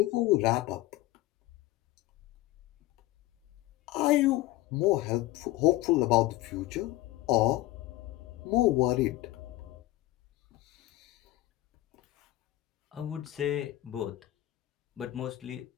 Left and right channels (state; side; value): quieter; right; 16.8 dB